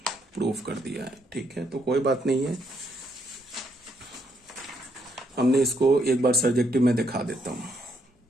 प्रूफ कर दिया है, ठीक है, तो कोई बात नहीं है, हमने इसको एक बार सर्जेक्टिव में दिखा देता हूं।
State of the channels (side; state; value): both; normal; correlation 0.74